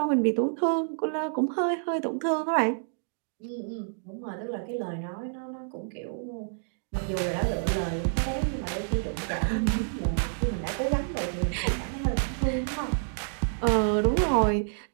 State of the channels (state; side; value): silent; left; digital silence